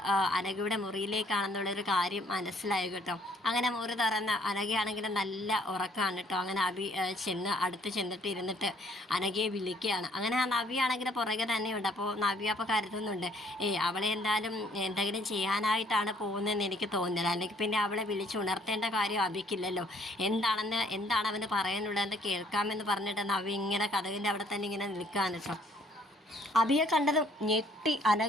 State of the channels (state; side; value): normal; both; correlation 0.63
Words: അനഘയുടെ മുറിയിലേക്കാണെന്നുള്ളൊരു കാര്യം മനസ്സിലായി കേട്ടോ. അങ്ങനെ മുറി തുറന്ന് അനഘയാണെങ്കിലും നല്ല ഉറക്കമാണ് കേട്ടോ. അങ്ങനെ അഭി അടുത്ത് ചെന്നിട്ട് ഇരുന്നിട്ട് അനഘയെ വിളിക്കുകയാണ്. അങ്ങനെ ആ നവ്യാണെങ്കിൽ പുറകെ തന്നെയുണ്ട്. അപ്പോൾ നവ്യ അപ്പോൾ കരുതുന്നുണ്ട്, അവളെ എന്തായാലും എന്തെങ്കിലും ചെയ്യാനായിട്ടാണ് പോകുന്നതെന്ന് എനിക്ക് തോന്നുന്നില്ല. അല്ലെങ്കിൽ പിന്നെ അവളെ വിളിച്ചുണർത്തേണ്ട കാര്യം അഭിക്കില്ലല്ലോ. എന്താണ് അവന് പറയാനുള്ളതെന്ന് കേൾക്കാമെന്ന് പറഞ്ഞിട്ട് നവ്യ ഇങ്ങനെ കഥകിൻ്റെ അവിടെ തന്നെ ഇങ്ങനെ നിൽക്കുകയാണ് കേട്ടോ. അഭിയെ കണ്ടതും ഞെട്ടി